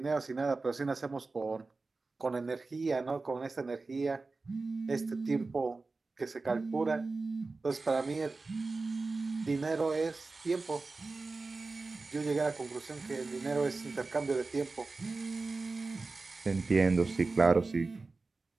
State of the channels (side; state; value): left; quieter; 3.7 dB